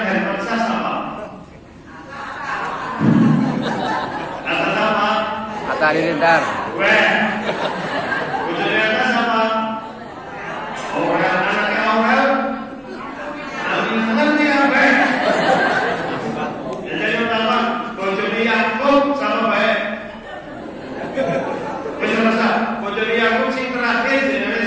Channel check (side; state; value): both; identical; correlation 1.00